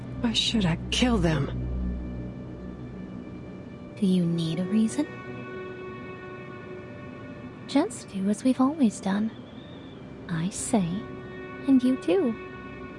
Why should I kill them? Do you need a reason? Just do as we've always done. I say, and you do.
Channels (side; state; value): both; identical; correlation 1.00